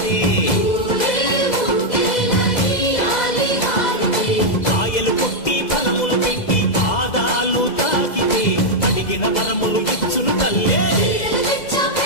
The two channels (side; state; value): right; late; 2.0 ms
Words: కాయలు కొట్టి ఫలములు పెట్టి పాదాలు తాకితే అడిగిన వరములు